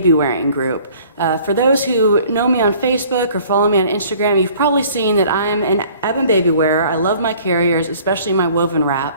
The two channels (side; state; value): both; inverted; correlation -0.53